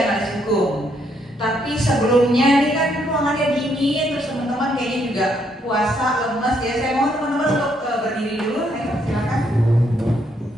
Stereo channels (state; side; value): normal; both; correlation 0.73